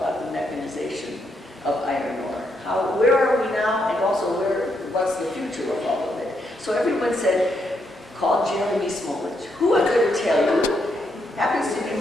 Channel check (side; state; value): both; normal; correlation 0.78